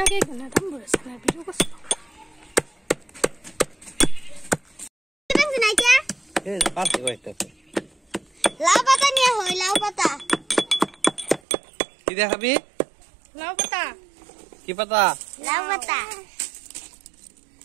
না দাম বলেছে না ভিডিও করছ এই পাশে কয়টা লাউ পাতা নিয়ে হয় লাউ পাতা কি দেখাবি লাউ পাতা কি পাতা লাউ পাতা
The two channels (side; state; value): left; drops out; at 11.4 s